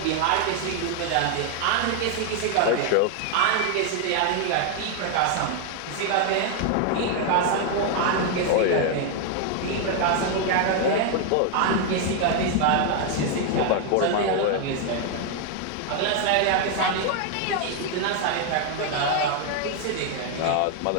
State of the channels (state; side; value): different; both; correlation 0.01